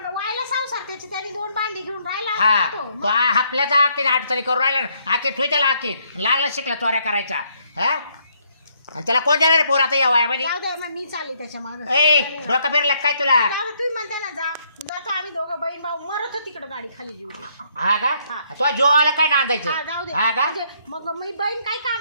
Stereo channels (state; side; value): inverted; both; correlation -0.70